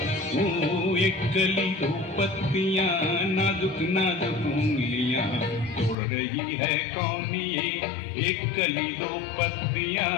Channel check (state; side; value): drops out; right; at 6.0 s